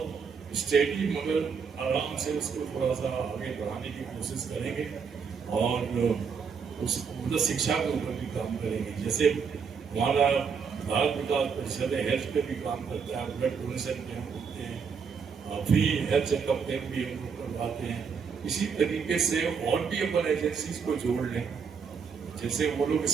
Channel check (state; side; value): quieter; left; 6.1 dB